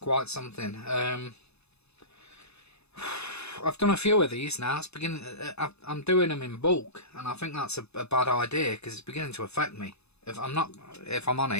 something. I've done a few of these now. It's beginning. I'm doing them in bulk, and I think that's a bad idea because it's beginning to affect me. If I'm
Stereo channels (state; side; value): late; right; 0.80 ms